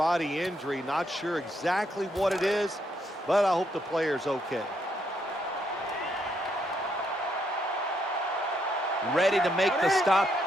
injury. Not sure exactly what it is, but I hope the player's okay. Ready to make the stop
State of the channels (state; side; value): normal; both; correlation 0.75